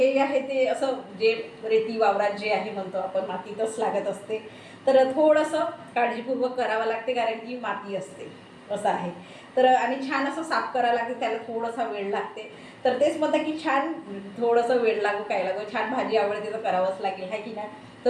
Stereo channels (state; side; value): identical; both; correlation 1.00